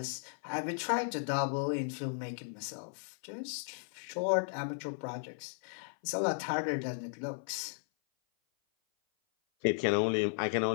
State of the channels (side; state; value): right; silent; 54 dB below the other